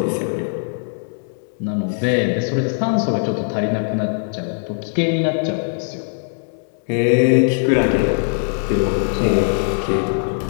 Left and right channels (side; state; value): right; silent; digital silence